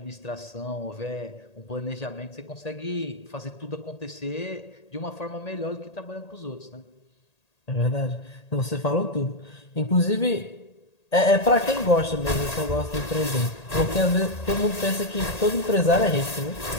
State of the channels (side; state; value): right; late; 1.8 ms